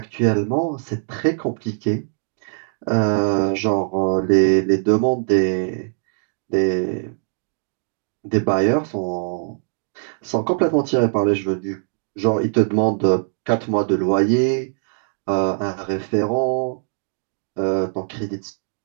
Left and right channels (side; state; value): left; silent; digital silence